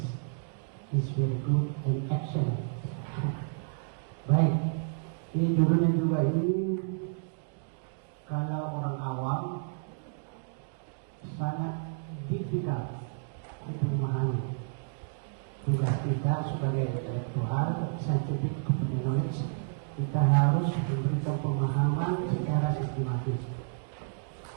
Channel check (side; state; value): left; silent; digital silence